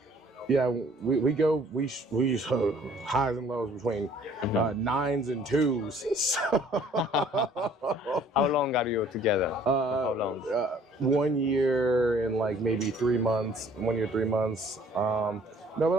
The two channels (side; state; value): both; normal; correlation 0.56